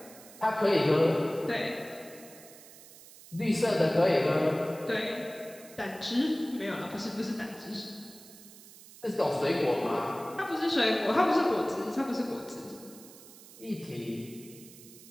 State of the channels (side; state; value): right; noise; hiss, 19 dB below the sound